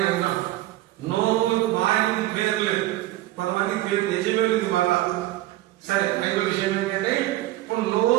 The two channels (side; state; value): left; quieter; 16.3 dB